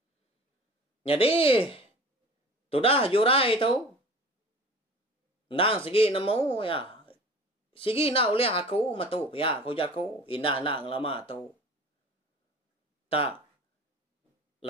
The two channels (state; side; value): normal; both; correlation 0.41